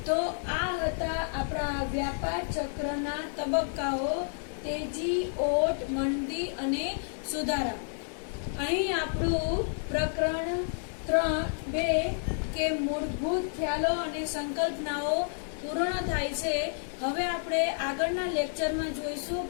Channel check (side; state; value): right; silent; digital silence